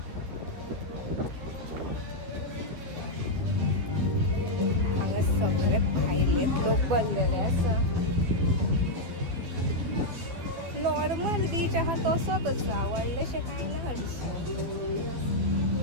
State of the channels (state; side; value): late; left; 12 ms